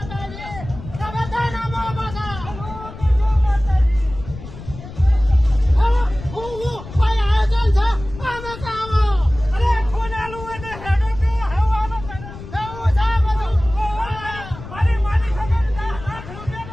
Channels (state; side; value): noise; left; rumble, 13 dB below the sound